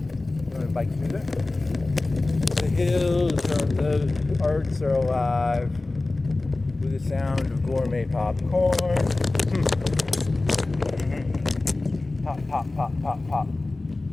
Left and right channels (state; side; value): quieter; right; 3.1 dB